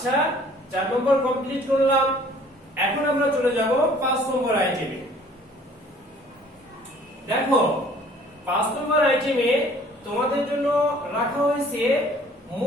4 নম্বর কমপ্লিট করলাম। এখন আমরা চলে যাব 5 নম্বর আইটেমে। দেখো 5 নম্বর আইটেমে তোমাদের জন্য রাখা হয়েছে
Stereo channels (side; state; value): both; normal; correlation 0.55